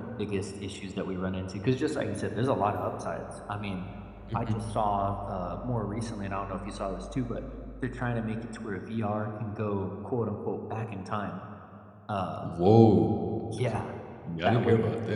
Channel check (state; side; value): identical; both; correlation 1.00